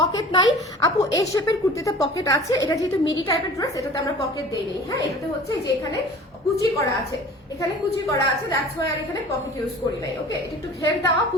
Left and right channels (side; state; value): both; normal; correlation 0.43